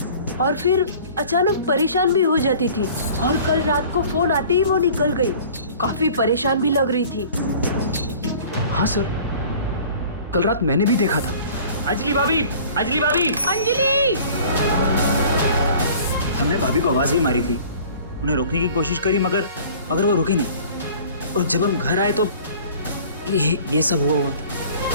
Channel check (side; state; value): both; inverted; correlation -0.47